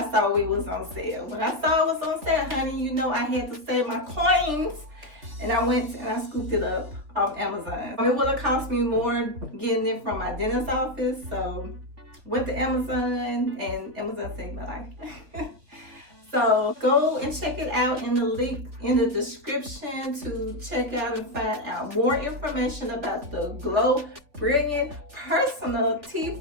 saw it was on sale. When I saw it was on sale, honey, you know I had to save my coins, and I went and I scooped it up off Amazon. It would have cost me more getting it from my dentist's office, so went to Amazon and Amazon saved my life. So go and check it out in the link in the description to check out and find out more information about the GLO Brilliant personal teeth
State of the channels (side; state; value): left; late; 3.6 ms